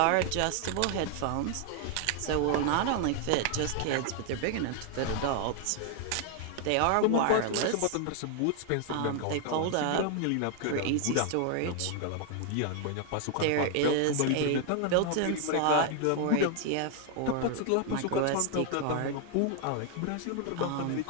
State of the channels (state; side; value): different; both; correlation 0.00